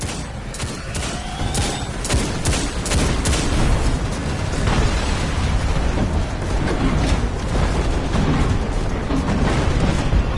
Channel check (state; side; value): identical; both; correlation 1.00